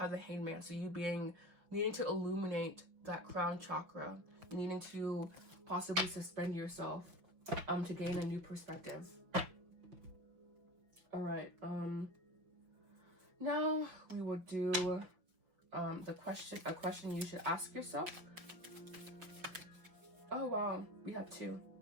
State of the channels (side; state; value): left; late; 6.1 ms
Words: the Hangman, so you needing to illuminate that crown chakra, needing to possibly suspend yourself to gain a new perspective. All right, now we will do a question you should ask yourself. Oh wow, we have two.